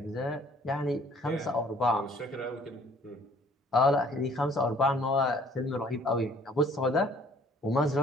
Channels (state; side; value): normal; both; correlation 0.57